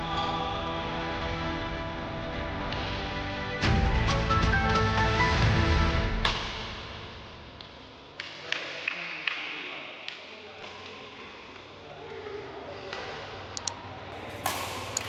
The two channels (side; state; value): both; identical; correlation 1.00